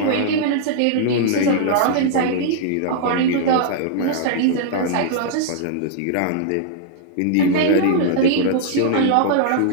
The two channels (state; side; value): different; both; correlation -0.01